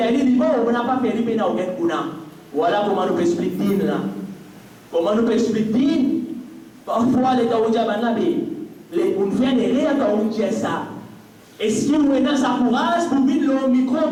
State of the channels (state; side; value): identical; both; correlation 1.00